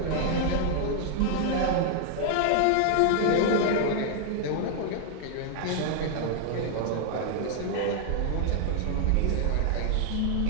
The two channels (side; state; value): both; different; correlation -0.01